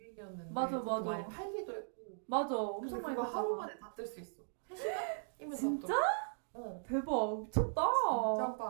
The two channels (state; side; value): silent; left; digital silence